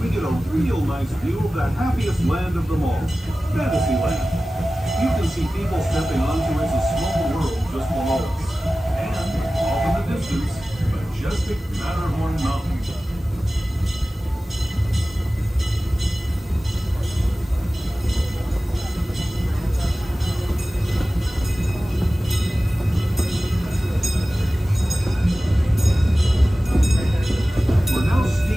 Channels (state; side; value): normal; both; correlation 0.96